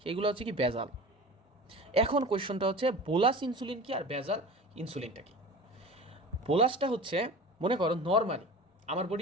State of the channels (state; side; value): normal; both; correlation 0.36